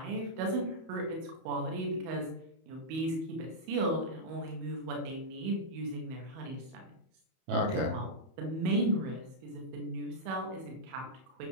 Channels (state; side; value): late; left; 31 ms